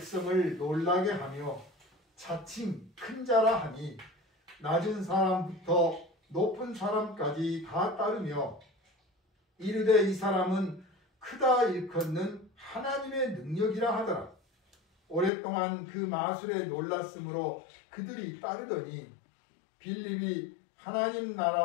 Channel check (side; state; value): right; drops out; at 15.3 s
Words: 놀라게 하며 자칭 큰 자라 하니 낮은 사람부터 높은 사람까지 다 따르며 이르되 이 사람은 크다 일컫는 하나님의 능력이라 하더라. 오랫동안 그 마술에 놀랐으므로 그들이 따르더니 빌립이 하나님